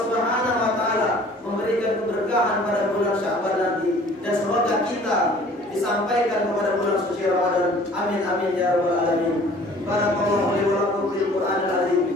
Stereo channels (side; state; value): both; normal; correlation 0.51